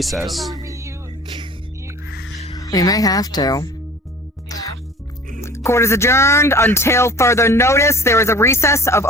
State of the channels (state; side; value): normal; both; correlation 0.45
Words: Tell me you We may have to. yeah. Court is adjourned until further notice. There is a recess of